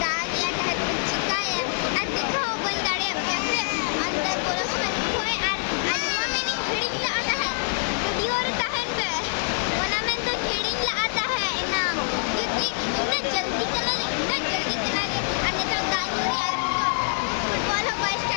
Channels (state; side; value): silent; right; 60 dB below the other